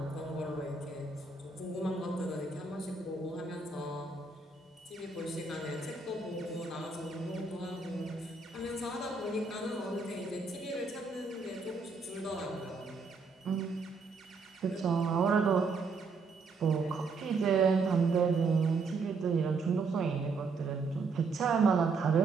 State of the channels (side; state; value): left; quieter; 4.2 dB